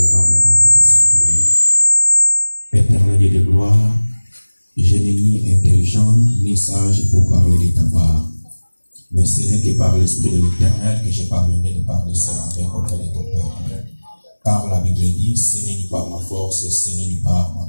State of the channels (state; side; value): inverted; both; correlation -1.00